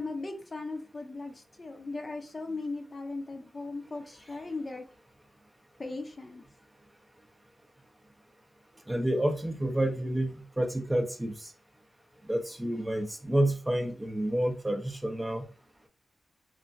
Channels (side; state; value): both; normal; correlation 0.95